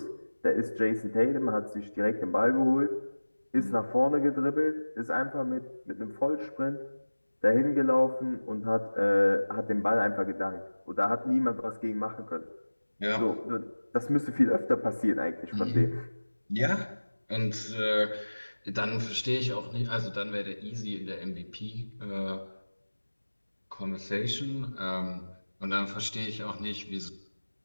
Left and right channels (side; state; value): both; inverted; correlation -1.00